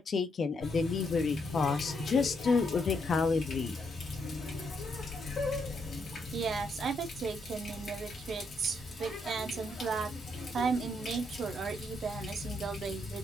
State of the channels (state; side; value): normal; both; correlation 0.77